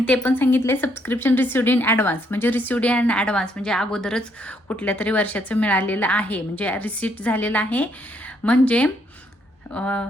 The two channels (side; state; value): both; normal; correlation 0.72